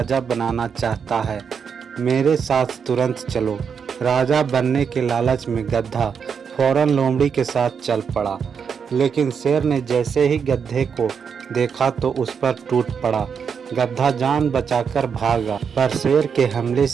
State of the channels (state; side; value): quieter; left; 6.6 dB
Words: बनाना चाहता है, मेरे साथ तुरंत चलो। राजा बनने के लालच में गधा फौरन लोमड़ी के साथ चल पड़ा, लेकिन शेर ने जैसे ही गधे को देखा तो उस पर टूट पड़ा। गधा जान बचाकर भागा, पर शेर के हमले